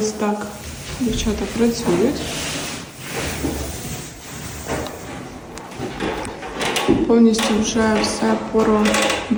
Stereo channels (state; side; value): identical; both; correlation 1.00